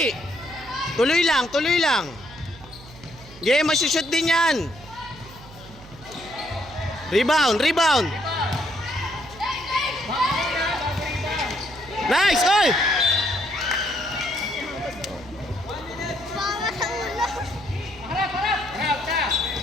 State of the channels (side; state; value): right; noise; hum, 19 dB below the sound